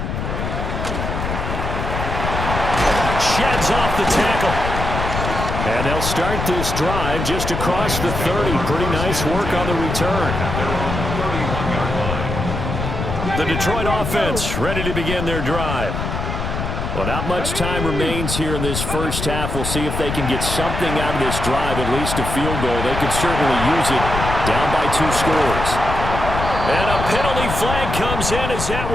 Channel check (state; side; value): noise; left; rumble, 4 dB below the sound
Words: Sheds off the tackle. And they'll start this drive just across the 30. Pretty nice work on the return. The Detroit offense ready to begin their drive. Well, not much time remains here in this first half. We'll see if they can get something out of this drive, at least a field goal. They could certainly use it down by 2 scores. And a penalty flag comes in as that